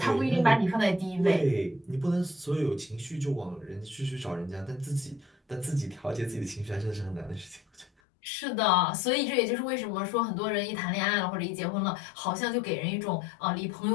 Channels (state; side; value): drops out; right; at 7.9 s